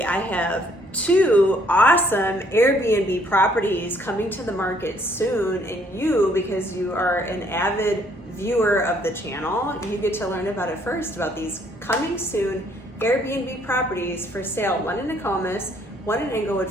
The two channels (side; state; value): both; normal; correlation 0.65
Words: I have two awesome Airbnb properties coming to the market soon, and you, because you are an avid viewer of the channel, you get to learn about it first, about these coming soon Airbnb properties for sale. One in Nokomis, one in Englewood,